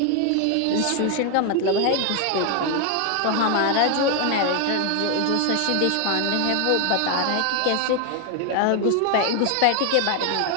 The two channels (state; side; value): different; both; correlation 0.01